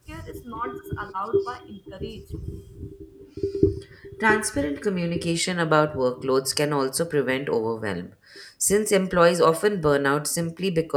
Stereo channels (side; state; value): both; identical; correlation 1.00